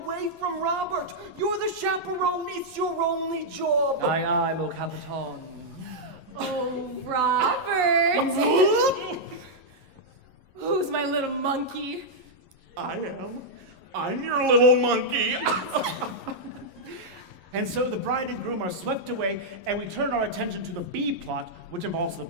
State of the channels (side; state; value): left; late; 11 ms